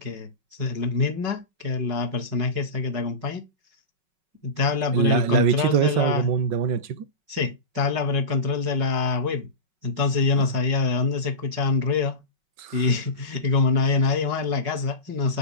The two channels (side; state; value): left; late; 5.4 ms